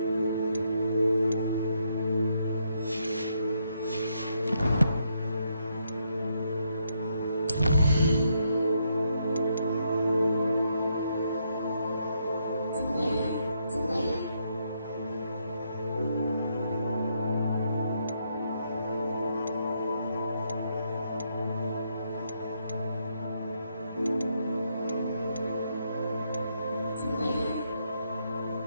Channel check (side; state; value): both; inverted; correlation -0.77